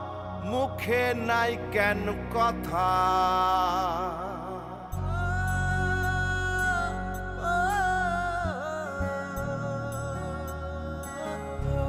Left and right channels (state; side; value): identical; both; correlation 1.00